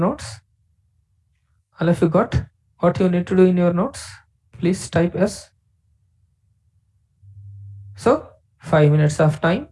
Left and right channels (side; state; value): both; identical; correlation 1.00